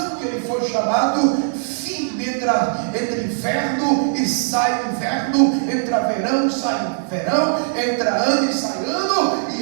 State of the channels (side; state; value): left; silent; digital silence